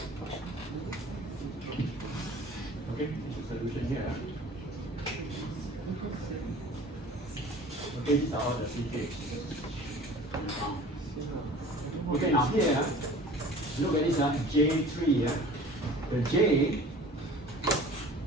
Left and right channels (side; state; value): both; normal; correlation 0.44